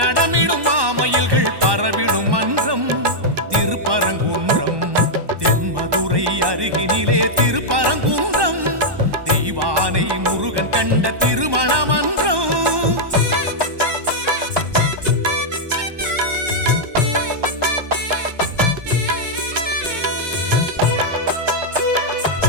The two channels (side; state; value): left; late; 1.2 ms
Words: மாமயில்கள் பரவிடும் மன்றம் திருப்பரங்குன்றம் தென்மதுரை அருகினிலே திருப்பரங்குன்றம் தெய்வானை முருகன் கண்ட திருமண மன்றம்